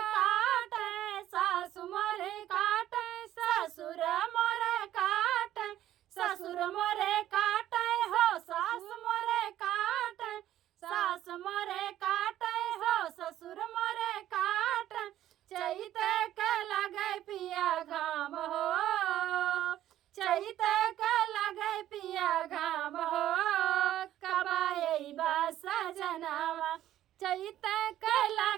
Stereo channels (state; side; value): quieter; left; 12.7 dB